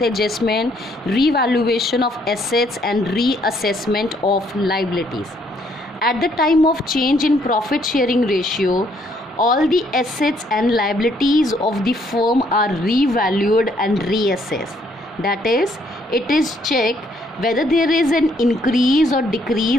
adjustment, revaluation of assets and reassessment of liabilities. At the time of change in profit sharing ratio, all the assets and liabilities of the firm are revalued and reassessed. That is, it is checked whether there is an increase or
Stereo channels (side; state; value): both; normal; correlation 0.68